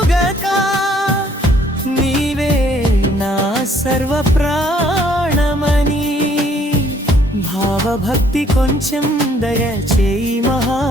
నీవే నా సర్వ ప్రాణమని. భావభక్తి కొంచెం దయచేయి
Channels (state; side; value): normal; both; correlation 0.63